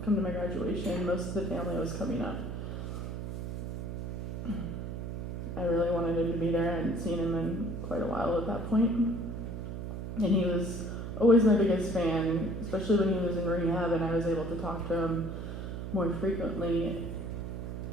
come to my graduation. Most of the family was coming up. I really wanted him to be there. I hadn't seen him in quite a while at that point. And he was always my biggest fan, especially when he was in rehab and I was able to talk to him more frequently.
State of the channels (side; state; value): right; noise; hum, 6 dB below the sound